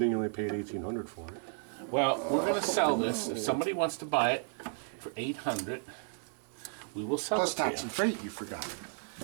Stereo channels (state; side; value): silent; left; 56 dB below the other